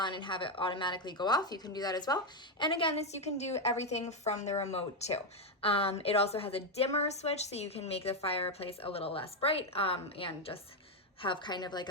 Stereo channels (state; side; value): normal; both; correlation 0.05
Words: and have it automatically go off. You can do that as well. And again, this you can do everything from the remote too. It also has a dimmer switch, so you can make the fireplace a little less bright and just have kind of like